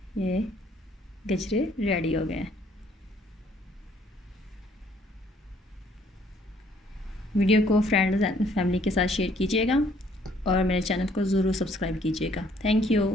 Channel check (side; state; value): both; normal; correlation 0.63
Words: ये गजरे रेडी हो गए। वीडियो को फ्रेंड्स एंड फैमिली के साथ शेयर कीजिएगा और मेरे चैनल को ज़रूर सब्सक्राइब कीजिएगा। Thank you.